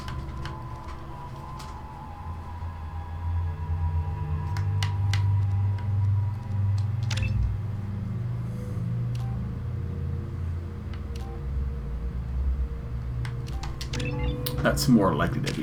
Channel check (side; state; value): both; identical; correlation 1.00